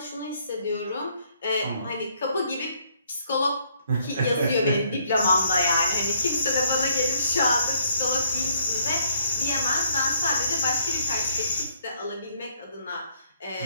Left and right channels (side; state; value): both; inverted; correlation -0.68